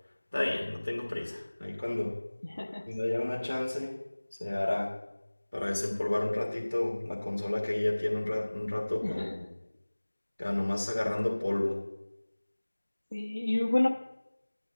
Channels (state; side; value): inverted; both; correlation -1.00